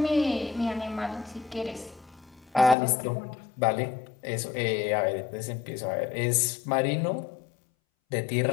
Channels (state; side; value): drops out; right; at 2.8 s